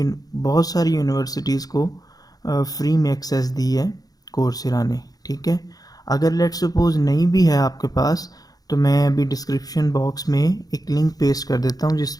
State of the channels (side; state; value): right; late; 0.18 ms